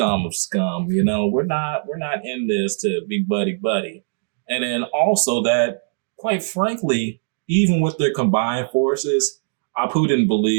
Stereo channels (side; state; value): left; silent; digital silence